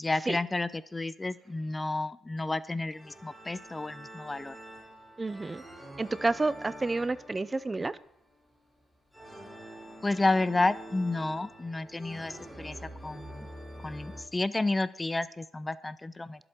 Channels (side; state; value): both; normal; correlation 0.96